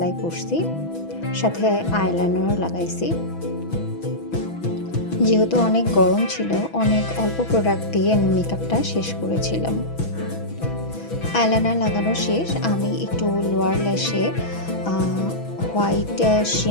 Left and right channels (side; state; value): right; late; 6.1 ms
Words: করছি, সাথে আইলাইনারও লাগাইছি। যেহেতু অনেক গরম ছিল, অনেক অল্প প্রোডাক্ট দিয়ে আমি মেকআপটা শেষ করেছিলাম। আইলাইনার লাগানো শেষ, আমি একটু লোয়ার ল্যাশে হোয়াইট